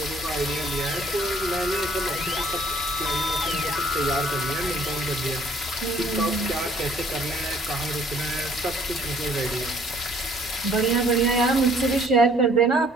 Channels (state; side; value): normal; both; correlation 0.59